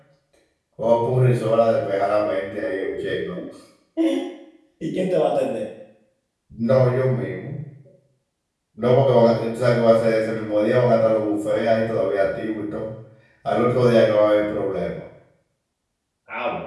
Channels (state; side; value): identical; both; correlation 1.00